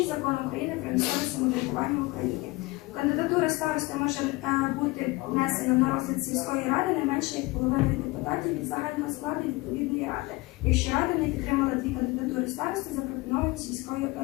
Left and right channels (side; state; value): right; quieter; 22.3 dB